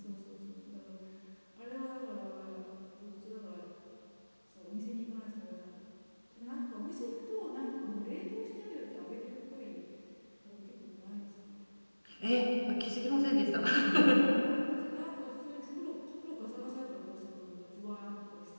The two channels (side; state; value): both; inverted; correlation -1.00